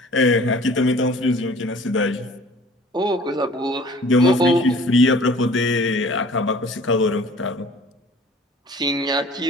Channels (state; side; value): normal; both; correlation 0.49